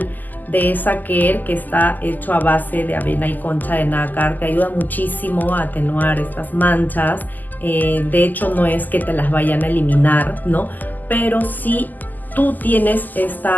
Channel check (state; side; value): late; right; 0.084 ms